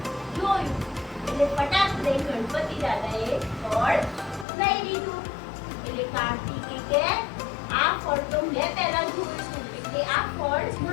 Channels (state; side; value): drops out; right; at 4.5 s